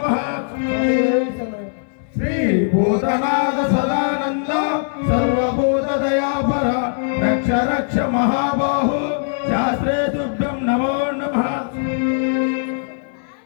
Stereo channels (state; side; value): silent; right; digital silence